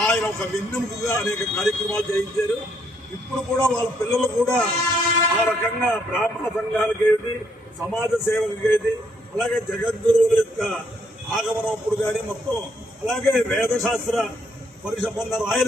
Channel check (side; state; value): both; normal; correlation 0.71